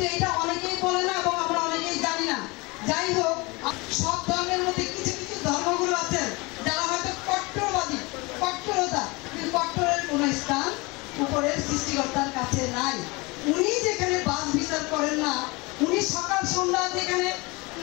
এটা অনেকেই বলে না এবং আমরা অনেকেই জানি না। যাই হোক, সব ধর্মের মধ্যে কিছু কিছু ধর্মগুলো আছে যারা হয়তো কট্টরবাদী, কট্টরতা, কিন্তু কট্টরের কোনো স্থান উপরের সৃষ্টিকর্তার কাছে নাই। উনি যেখানে বাস বিচার করেন না, উনি সকাল সন্ধ্যা যেখানে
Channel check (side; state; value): right; quieter; 25.4 dB